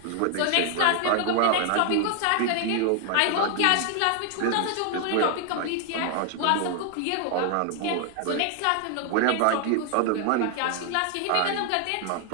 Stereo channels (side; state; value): both; different; correlation 0.00